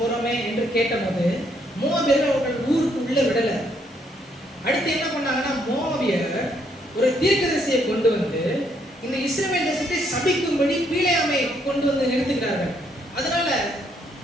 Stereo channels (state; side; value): normal; both; correlation 0.71